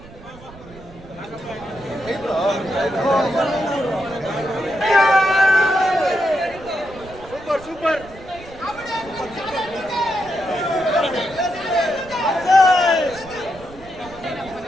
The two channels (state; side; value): noise; right; rumble, 19 dB below the sound